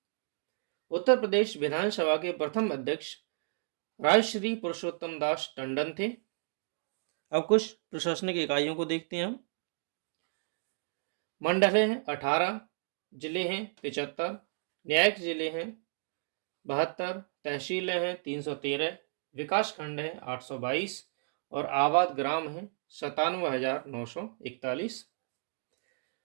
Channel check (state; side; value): silent; left; digital silence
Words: उत्तर प्रदेश विधानसभा के प्रथम अध्यक्ष राजश्री पुरुषोत्तम दास टंडन थे। अब कुछ प्रशासनिक इकाइयों को देखते हैं हम। मंडल हैं 18, जिले हैं 75, न्यायिक जिले हैं 72, तहसीलें हैं 313, विकास खंड हैं 822 और आबाद ग्राम हैं 97,941।